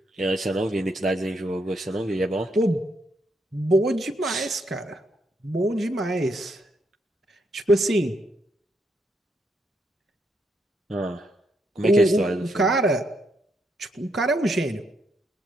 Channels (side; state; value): both; normal; correlation 0.77